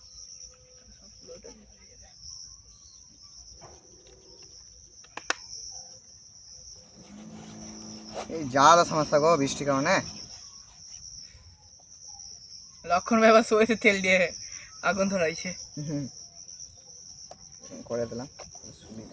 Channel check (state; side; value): identical; both; correlation 1.00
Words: এই যা সমস্যা গো বৃষ্টির কারণে। লক্ষণ ভাই আবার সইতে তেল দিয়ে আগুন ধরাইছে। করে দিলাম